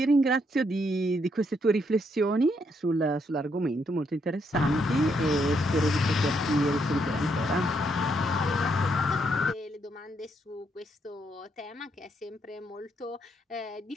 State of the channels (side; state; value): both; normal; correlation 0.75